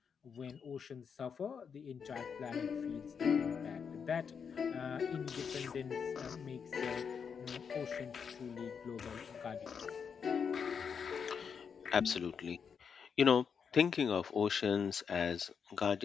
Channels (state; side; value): quieter; right; 6.5 dB